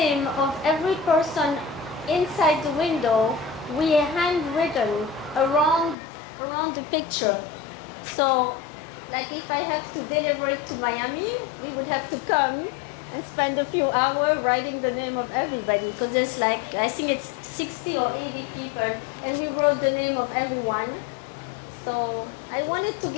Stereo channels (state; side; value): drops out; right; at 6.0 s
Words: of every person inside the window, we handwritten around the picture. So, like if I have to deliver it to Miami, we would have to come and spend a few hours writing the name of everybody because there's like, I think it's 60 or 80 people and we wrote the name of everyone. So I wanted to